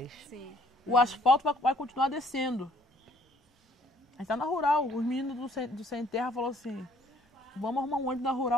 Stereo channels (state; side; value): normal; both; correlation 0.61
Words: Sim. O asfalto vai continuar descendo. A gente tá na rural, os meninos do Sem Terra falaram assim, vamos arrumar um ônibus na